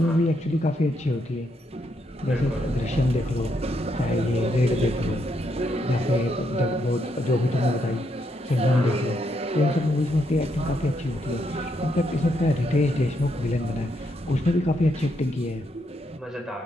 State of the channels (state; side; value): normal; both; correlation 0.78